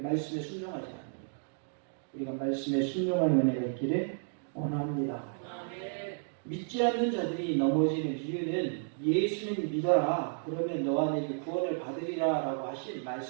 순종하지 않습니까? 우리가 말씀에 순종하는 은혜가 있기를 원합니다. 믿지 않는 자들이 넘어지는 이유는 예수님 믿어라 그러면 너와 내게 구원을 받으리라 라고 하신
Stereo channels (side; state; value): left; silent; digital silence